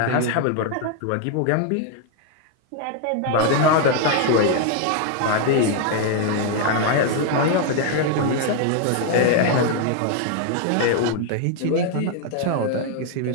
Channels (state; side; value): different; both; correlation 0.00